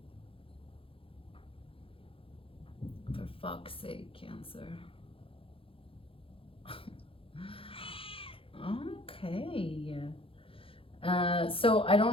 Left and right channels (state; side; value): late; right; 0.26 ms